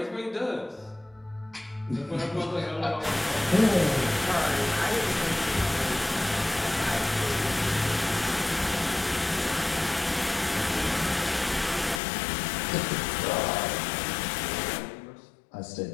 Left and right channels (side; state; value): right; drops out; at 12.0 s